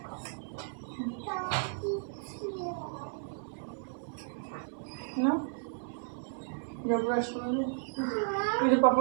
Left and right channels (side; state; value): left; silent; 55 dB below the other